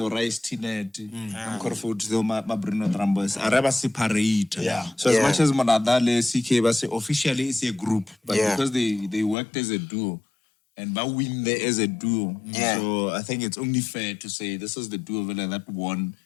Rice Tinet. I'm going to vote to the Mabrino Drambos. Araba separate. So as much as Monadale CK was officially it's a group, but because they worked as a duo and but win there as a duo. So I think it's only fair to say this is the duo that won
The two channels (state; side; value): drops out; right; at 9.3 s